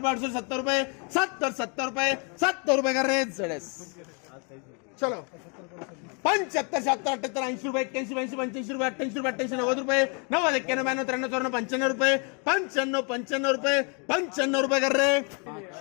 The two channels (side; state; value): right; quieter; 35.7 dB